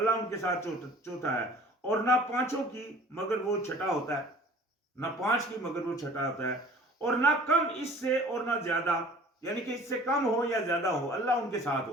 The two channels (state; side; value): normal; both; correlation 0.48